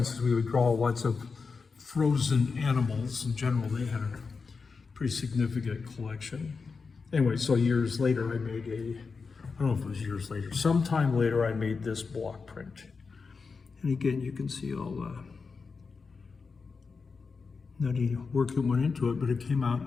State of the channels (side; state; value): right; quieter; 4.8 dB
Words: we would draw lots of frozen animals. In general, they had a pretty significant collection. Anyway, so years later, I made I don't know if it was years later, sometime later, I made this block print. And again, you can see all the nutty work that went into it, but it came out,